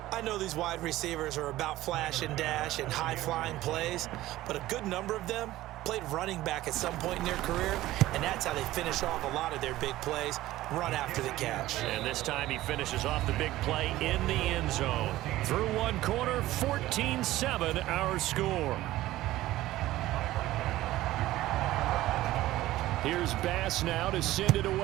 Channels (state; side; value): quieter; left; 15.9 dB